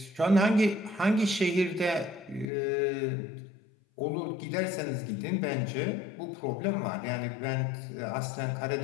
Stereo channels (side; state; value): right; drops out; at 2.5 s